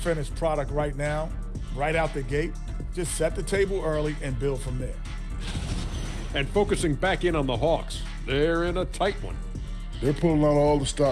product right now, right out the gate. Just set the table early and build from there. And focusing back in on the Hawks, they're in a tight one. They're pulling out all the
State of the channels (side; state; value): both; identical; correlation 1.00